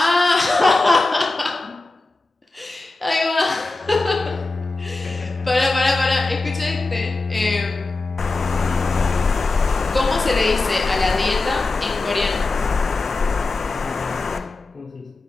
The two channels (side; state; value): right; quieter; 3.3 dB